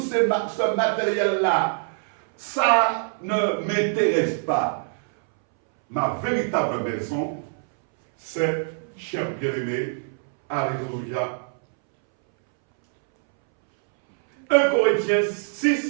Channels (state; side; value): silent; left; 62 dB below the other